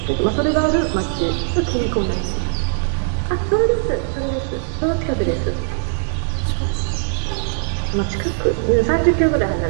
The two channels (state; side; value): silent; left; digital silence